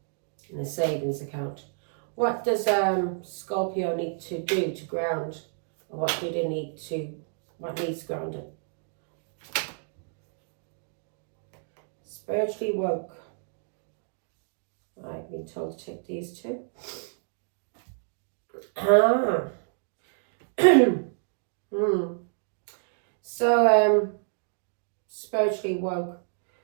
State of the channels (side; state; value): left; silent; digital silence